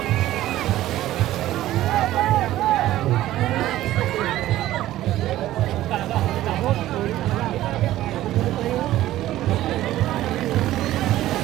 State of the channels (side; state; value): left; quieter; 14.6 dB